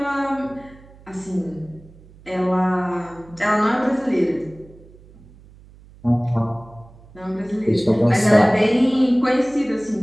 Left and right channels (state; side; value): noise; right; hum, 24 dB below the sound